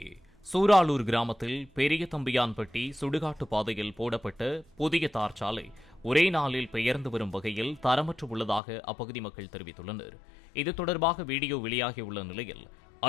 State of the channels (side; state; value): right; drops out; at 8.6 s